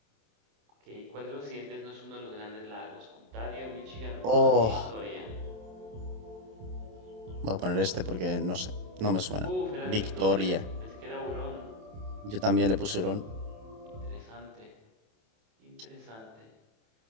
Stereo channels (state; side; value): late; left; 27 ms